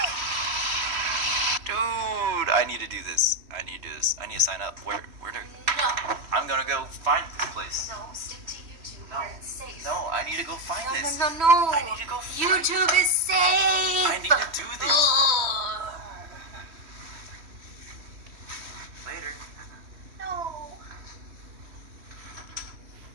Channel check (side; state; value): left; late; 3.1 ms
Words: Dude, I need to do this. I need to do this. I need to sign up. Where to? No, I'm gonna go find this place. no, stick to YouTube No. where it's safe. No, I need to go find this. No. I need to go find YouTube is safe. I need to do this. Ugh. Later. No.